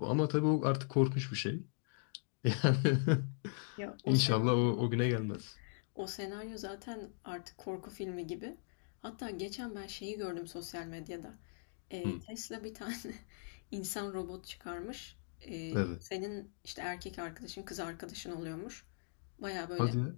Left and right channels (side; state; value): right; silent; digital silence